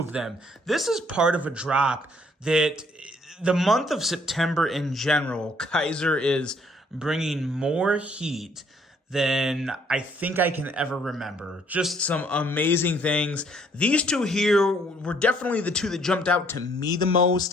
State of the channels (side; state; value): both; normal; correlation 0.64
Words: them. This is part of a drop that the month of September in general, Kizer is bringing more heat than I think I can ever remember. Just some amazing things. These two here were definitely the two that jumped out to me the